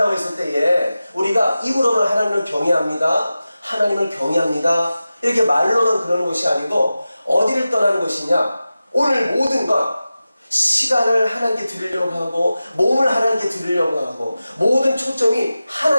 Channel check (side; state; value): both; inverted; correlation -0.94